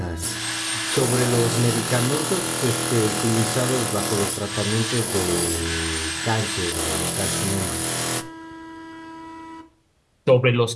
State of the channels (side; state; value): both; identical; correlation 1.00